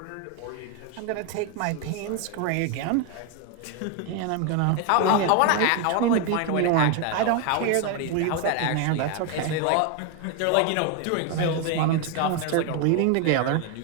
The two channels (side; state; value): both; different; correlation 0.01